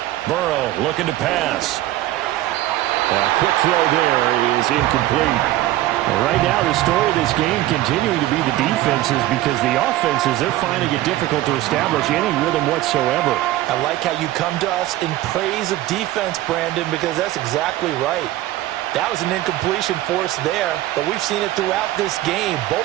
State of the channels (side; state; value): left; quieter; 15.5 dB